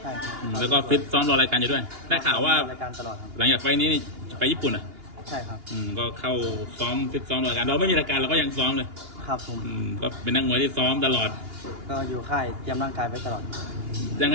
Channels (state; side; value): late; left; 2.8 ms